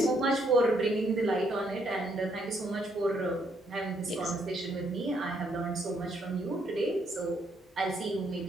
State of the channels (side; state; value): both; normal; correlation 0.71